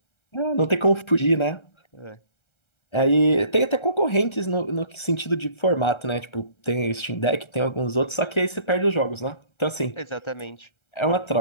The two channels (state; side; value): late; right; 1.3 ms